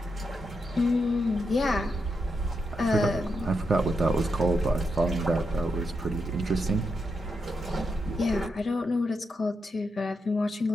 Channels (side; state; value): both; normal; correlation 0.84